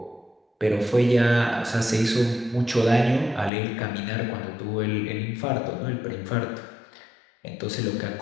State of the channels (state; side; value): drops out; right; at 3.5 s